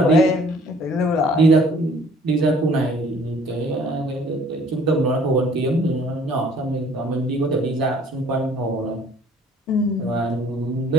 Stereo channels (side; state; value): both; normal; correlation 0.56